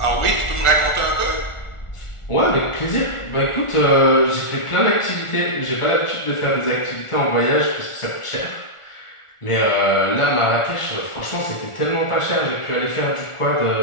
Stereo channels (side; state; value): right; late; 1.4 ms